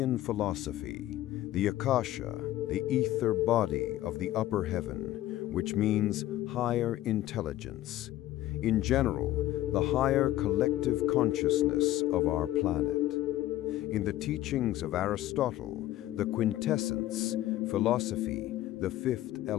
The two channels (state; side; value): quieter; right; 14.6 dB